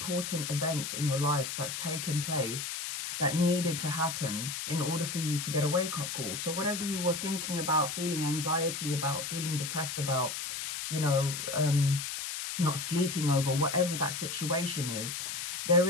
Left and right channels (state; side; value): noise; left; hiss, 4 dB below the sound